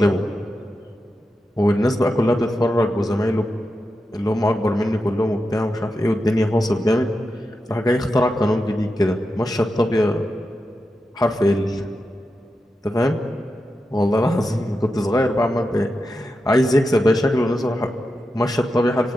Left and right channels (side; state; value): both; normal; correlation 0.89